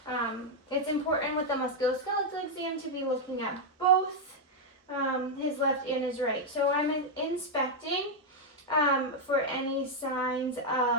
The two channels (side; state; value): both; normal; correlation -0.01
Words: it's important with the musculoskeletal exam to be looking at both his left and his right. So I'm inspecting for any signs